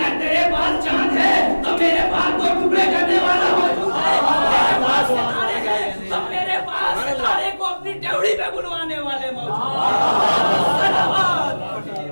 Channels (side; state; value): both; inverted; correlation -1.00